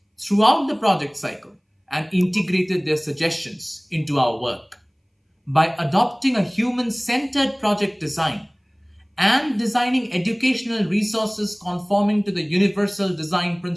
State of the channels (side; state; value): both; identical; correlation 1.00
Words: throughout the project cycle and integrated their suggestions into our work. By adopting a human-centered project design and designing educational resources conforming to the universal design